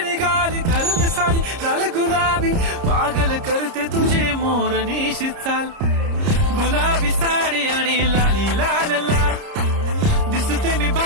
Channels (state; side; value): late; left; 30 ms